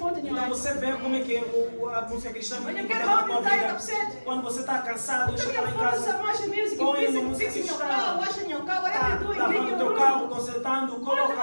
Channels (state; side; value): inverted; both; correlation -1.00